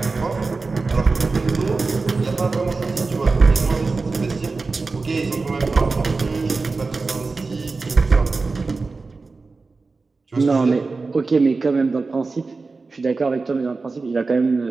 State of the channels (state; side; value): quieter; left; 4.0 dB